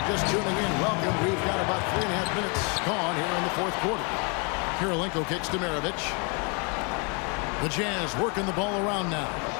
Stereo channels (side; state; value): right; quieter; 34.1 dB